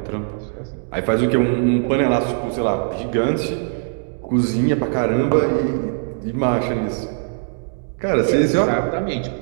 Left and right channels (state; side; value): silent; left; digital silence